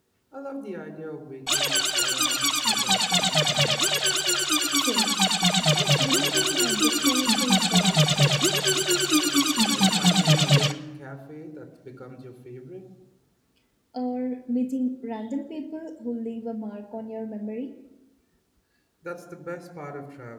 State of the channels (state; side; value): identical; both; correlation 1.00